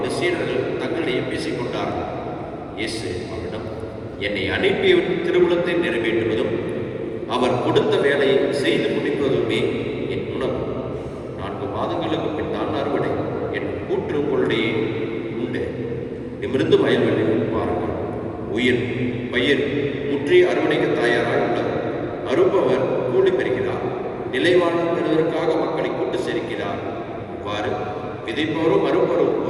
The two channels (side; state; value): both; identical; correlation 1.00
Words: இந்த சீடர்கள் தங்களிடையே பேசிக்கொண்டார்கள். இயேசு அவரிடம், என்னை அனுப்பியவரின் திருவுளத்தை நிறைவேற்றுவதும் அவர் கொடுத்த வேலையை செய்து முடிப்பதுமே என் உணவு. 4 மாதங்களுக்கு பின் தான் அறுவடை. என் கூற்று உங்களுடைய உண்டு. நிமிர்ந்து வயல்வெளியில் பாருங்கள். உயிர் பயிர் முற்றி அறுவடைக்கு தயாராக உள்ளது. அறுப்பவர் கூலி பெறுகிறார். நிலைவாழ்வு பெறுவதற்காக மக்களை கூட்டு சேர்க்கிறார். இவ்வாறு விதைப்பவரும் அறுப்பவரும்